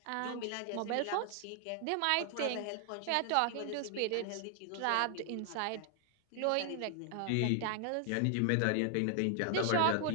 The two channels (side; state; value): both; different; correlation 0.00